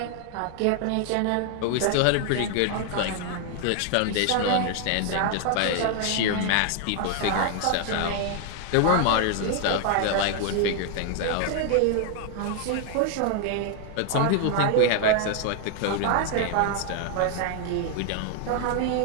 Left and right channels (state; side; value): different; both; correlation 0.00